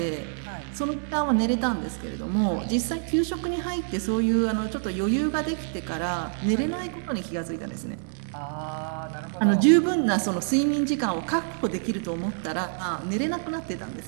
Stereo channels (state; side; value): silent; left; digital silence